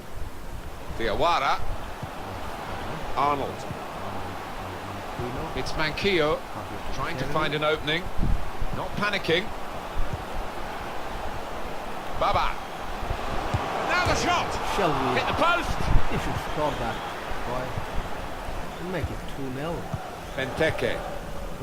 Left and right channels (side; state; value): both; identical; correlation 1.00